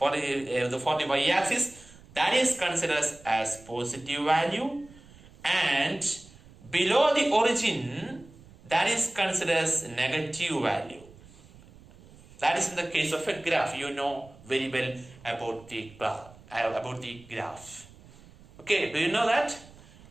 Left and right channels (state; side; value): noise; right; rumble, 23 dB below the sound